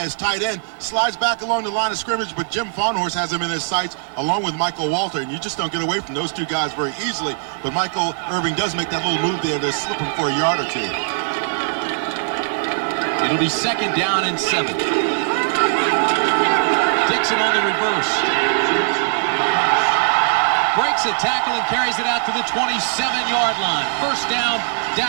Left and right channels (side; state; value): left; silent; digital silence